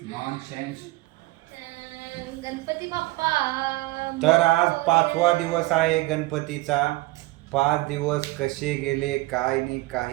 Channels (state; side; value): quieter; left; 20.5 dB